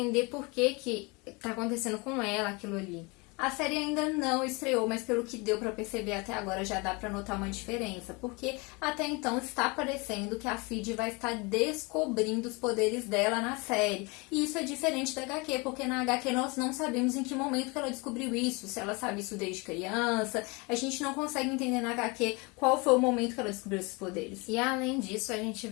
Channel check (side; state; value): right; quieter; 27.9 dB